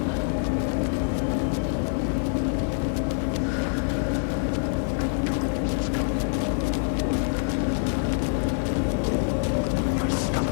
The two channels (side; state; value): right; silent; digital silence